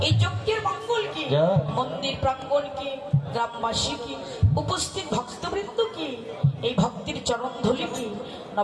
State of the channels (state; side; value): identical; both; correlation 1.00